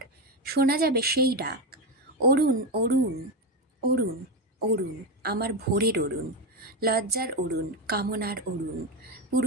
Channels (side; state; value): both; normal; correlation 0.12